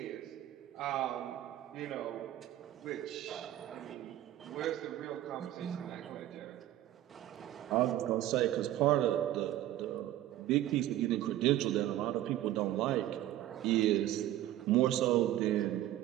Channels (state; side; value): quieter; left; 13.6 dB